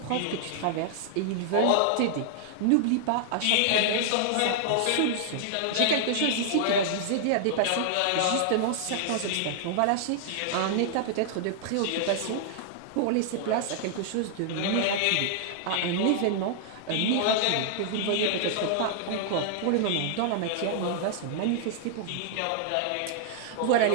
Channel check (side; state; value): both; different; correlation -0.01